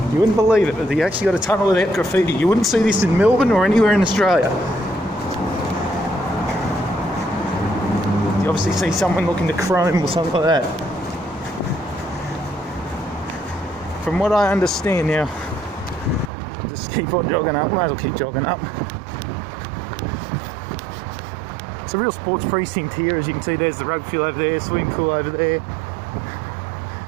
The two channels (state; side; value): drops out; left; at 16.3 s